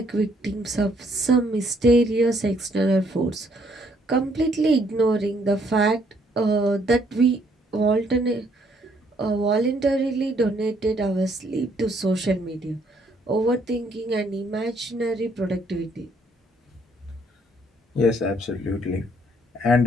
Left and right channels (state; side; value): normal; both; correlation 0.67